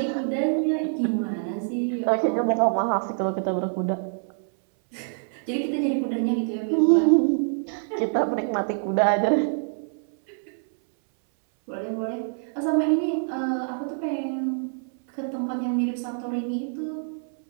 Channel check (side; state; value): left; silent; 61 dB below the other